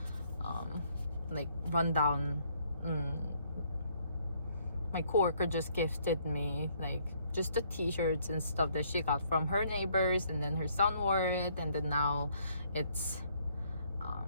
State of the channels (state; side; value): inverted; both; correlation -0.67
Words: like rundown. My coworker just gifted me like just the t-shirts and stuff that she got from her neighbors, and then her son wore it, and then now it's